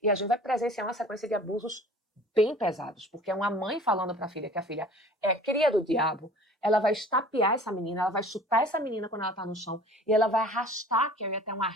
e a gente vai presenciar uma sequência de abusos bem pesados, porque é uma mãe falando para a filha que a filha é cria do diabo, ela vai estapear essa menina, ela vai chutar essa menina quando ela está no chão, e ela vai arrastar Carrie até um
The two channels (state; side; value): normal; both; correlation 0.46